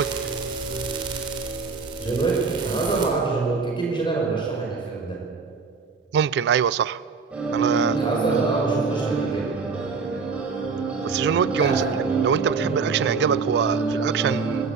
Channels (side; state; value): left; quieter; 4.9 dB